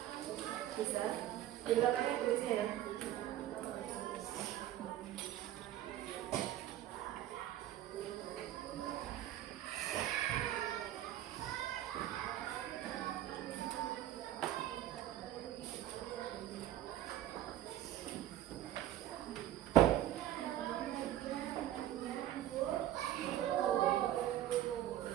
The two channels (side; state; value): left; quieter; 12.8 dB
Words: Bisa. Di belakangnya tulisnya ya.